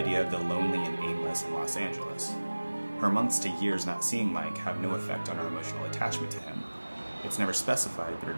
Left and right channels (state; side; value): inverted; both; correlation -1.00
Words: of the lonely and aimless in Los Angeles. Her months to years not seeing Mike have no effect on her emotional attachment to him. It's never specified, but her